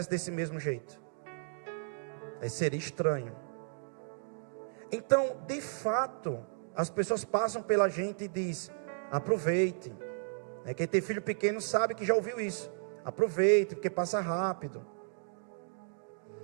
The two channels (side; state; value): left; silent; digital silence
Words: desse mesmo jeito. Aí seria estranho. Então, de fato, as pessoas passam pela gente e dizem, aproveite. Quem tem filho pequeno sabe que já ouviu isso. Aproveite, porque passa rápido.